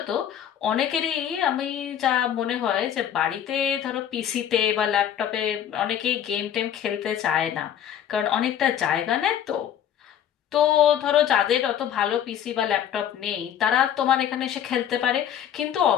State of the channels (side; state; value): right; quieter; 9.9 dB